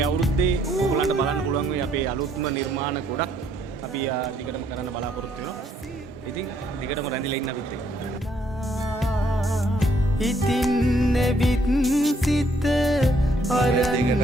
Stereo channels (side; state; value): both; normal; correlation 0.69